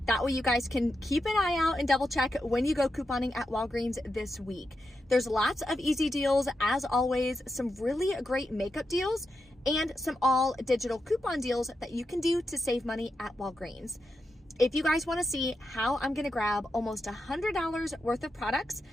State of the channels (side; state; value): both; normal; correlation 0.87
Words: That way you guys can keep an eye out and double check when you go couponing at Walgreens this week. There's lots of easy deals, as always, some really great makeup deals, and some all digital coupon deals that you can do to save money at Walgreens. If you guys want to see how I'm going to grab almost $100 worth of products,